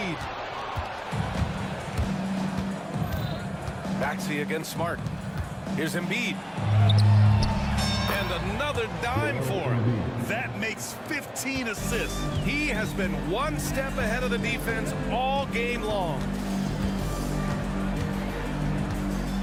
Maxey against Smart. Here's Embiid. And another dime for him. That makes 15 assists. He has been one step ahead of the defense all game long.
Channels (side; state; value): both; identical; correlation 1.00